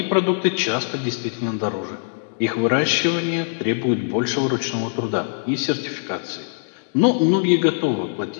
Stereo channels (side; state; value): right; silent; digital silence